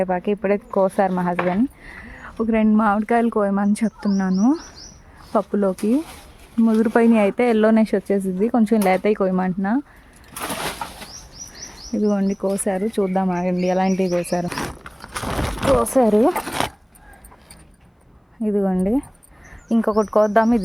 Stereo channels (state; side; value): identical; both; correlation 1.00